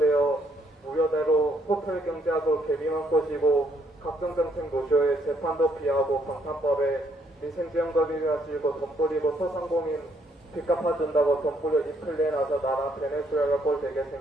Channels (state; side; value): normal; both; correlation 0.70